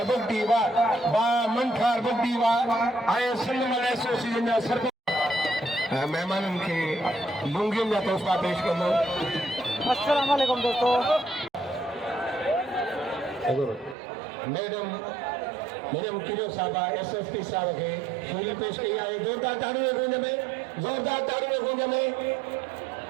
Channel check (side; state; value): left; drops out; at 14.0 s